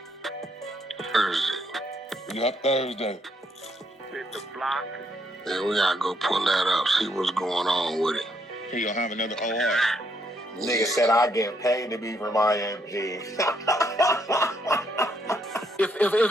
Thursday. Yep, Thursday. Hit the block. Yeah, we got to go pull that up, see what's going on with it. He gonna have another OR. Nigga said I get paid to be for my MG. If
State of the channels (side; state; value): both; normal; correlation 0.73